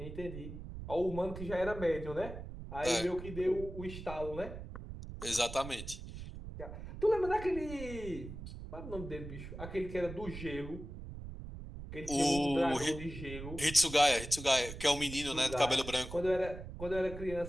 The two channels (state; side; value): noise; right; rumble, 10 dB below the sound